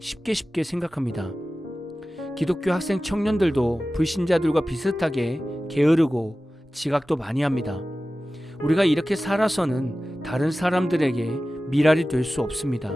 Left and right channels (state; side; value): normal; both; correlation 0.95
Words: 생각합니다. 기독교 학생 청년들도 불신자들과 비슷하게 게으르고 지각도 많이 합니다. 우리가 이렇게 살아서는 다른 사람들에게 미랄이 될 수 없습니다.